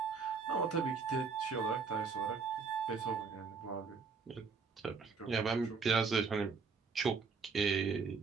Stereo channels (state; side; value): quieter; left; 5.2 dB